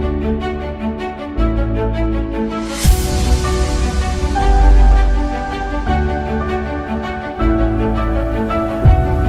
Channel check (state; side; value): identical; both; correlation 1.00